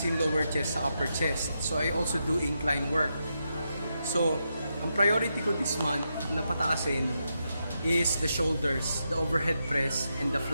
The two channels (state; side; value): inverted; both; correlation -0.84